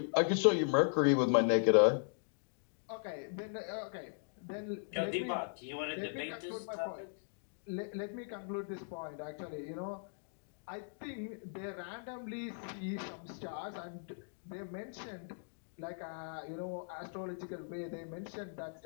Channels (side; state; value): right; silent; digital silence